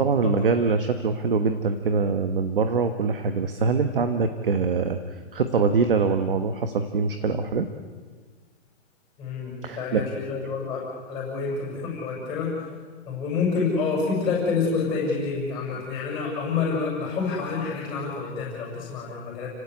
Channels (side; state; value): both; normal; correlation -0.02